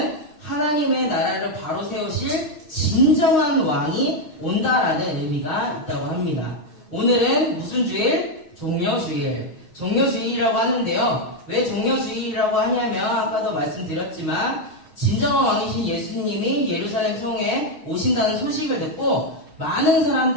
하나님의 나라를 바로 세우실 진정한 왕이 온다라는 의미가 있다고 합니다. 오늘은 무슨 주일? 종려주일. 종려주일이라고 하는데요. 왜 종려주일이라고 하냐면 아까도 말씀드렸지만 진정한 왕이신 예수님이 예루살렘 성에 오신다는 소식을 듣고 많은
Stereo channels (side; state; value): right; late; 6.4 ms